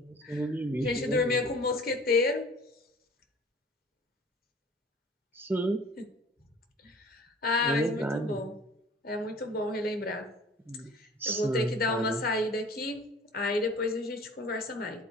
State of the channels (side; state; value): both; normal; correlation 0.47